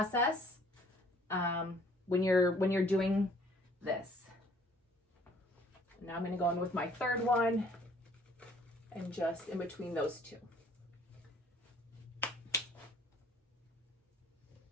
when you're doing this. Now I'm gonna go in with my 3rd one, and just in between those 2.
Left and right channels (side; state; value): both; normal; correlation 0.58